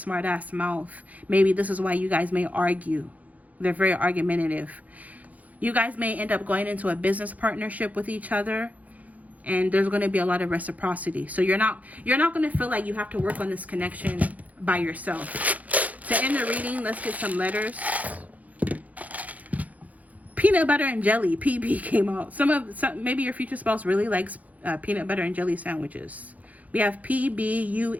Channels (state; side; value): late; left; 0.075 ms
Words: ass mouth. Maybe this is why you guys may argue. They're very argumentative. You guys may end up going into a business partnership with each other, and there's going to be a lot of reciprocity. So you're not going to feel like you have to work on this connection by yourself. To end the reading, let's get some letters. Peanut butter and jelly. PB came out. Maybe your future spouse really likes peanut butter and jelly sandwiches. We have